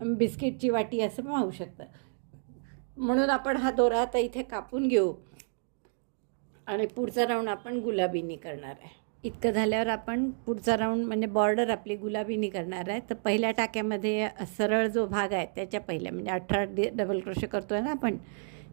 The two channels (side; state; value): left; silent; digital silence